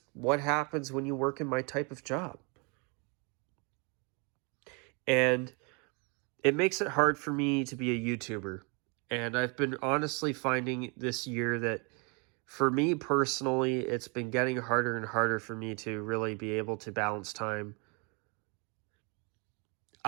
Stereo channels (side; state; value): left; quieter; 32.8 dB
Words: what happens when you work in my type of job. And it makes it hard for me to be a YouTuber. And I've been honestly finding this year that for me personally, it's been getting harder and harder for me to really be able to balance time.